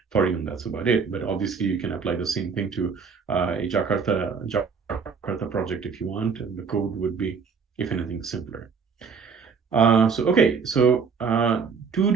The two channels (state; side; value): quieter; left; 5.7 dB